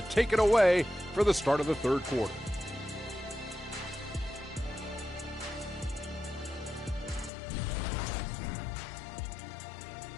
take it away for the start of the third quarter.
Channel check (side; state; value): right; drops out; at 7.3 s